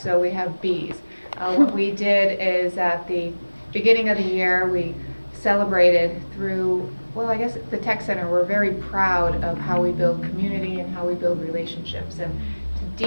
so we have bees. What we did is at the beginning of the year, we celebrated through, well, I guess the Tech Center, we're very proud of how we build community and how we build relationships. And to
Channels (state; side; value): inverted; both; correlation -1.00